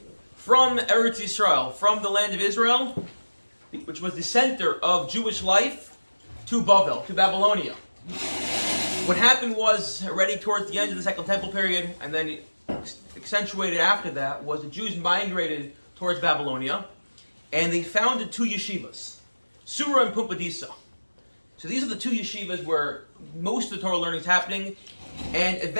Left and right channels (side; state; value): both; inverted; correlation -1.00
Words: from Eretz Yisrael, from the land of Israel, which was the center of Jewish life, to Bavel, to Babylonia. What happened was, already towards the end of the Second Temple period, and then accentuated after that, was the Jews migrated towards Babylonia, and they founded two yeshivas, Surah and Pumbedisa. So these are the two yeshivas where most of the Torah learning is happening, and